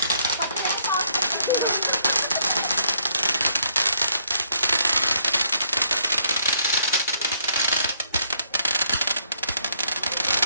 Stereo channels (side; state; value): both; inverted; correlation -0.70